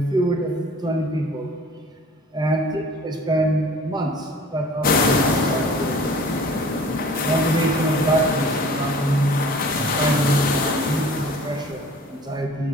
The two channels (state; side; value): normal; both; correlation 0.47